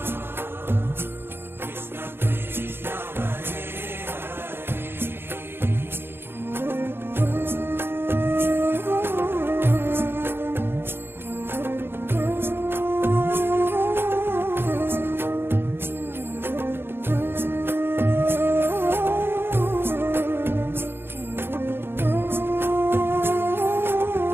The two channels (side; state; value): left; late; 0.11 ms